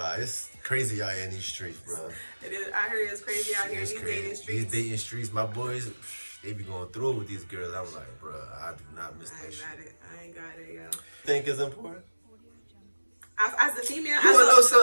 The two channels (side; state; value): both; inverted; correlation -1.00